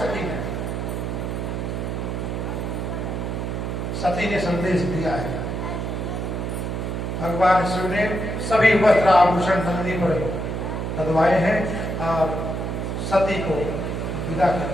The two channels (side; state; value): right; noise; hum, 3 dB below the sound